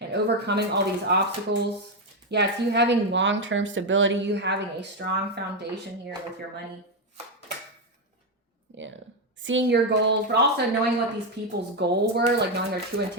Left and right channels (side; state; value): both; normal; correlation 0.06